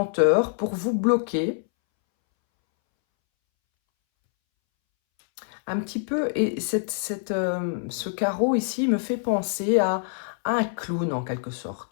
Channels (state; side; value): silent; right; 61 dB below the other